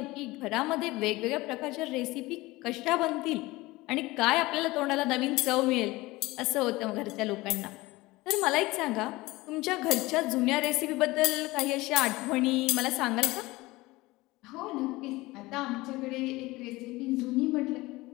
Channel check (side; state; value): right; quieter; 20.3 dB